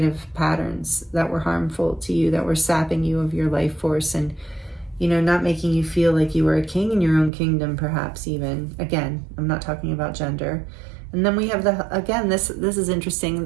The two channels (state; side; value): drops out; left; at 7.3 s